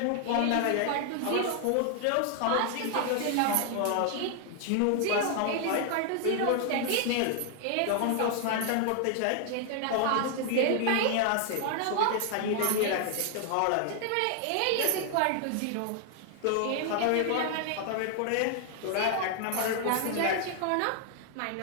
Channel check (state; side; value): different; both; correlation 0.00